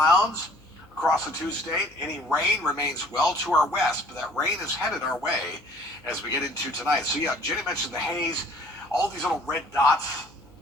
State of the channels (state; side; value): noise; left; hum, 28 dB below the sound